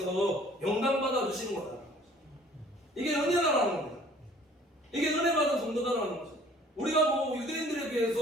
영광받아 주시는 거다. 이게 은혜다라는 겁니다. 이게 은혜 받은 성도다라는 거죠. 우리가 뭐 유대인들에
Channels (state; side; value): normal; both; correlation 0.54